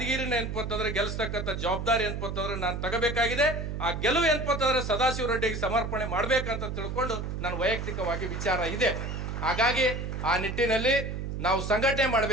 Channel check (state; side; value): noise; right; hum, 4 dB below the sound